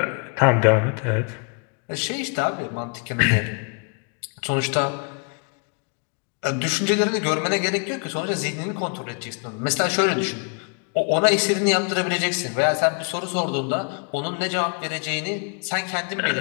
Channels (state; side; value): quieter; right; 36.7 dB